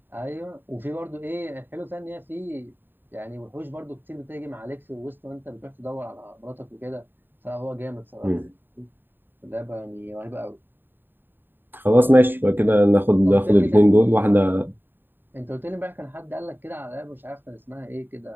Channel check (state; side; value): late; left; 0.095 ms